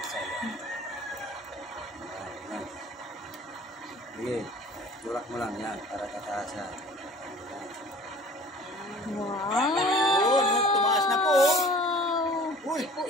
Yan. Sige. Tulak mo lang yan para tataas yan. Wow! Tumaas na po. Uy!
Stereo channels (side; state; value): both; normal; correlation 0.47